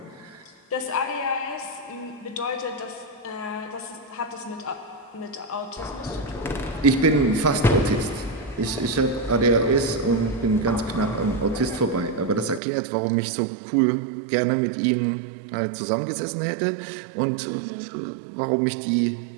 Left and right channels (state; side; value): drops out; left; at 12.6 s